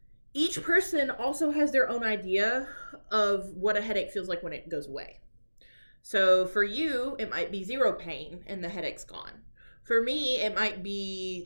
Each person also has their own idea of what a headache feels like when it goes away. So for you, it might be 0 pain and the headache's gone. For me, it might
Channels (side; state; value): both; inverted; correlation -1.00